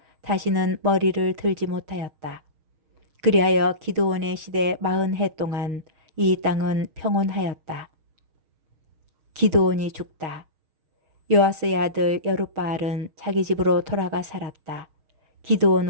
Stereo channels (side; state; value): left; late; 6.4 ms